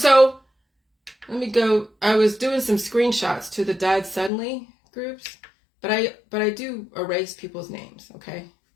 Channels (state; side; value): drops out; right; at 4.3 s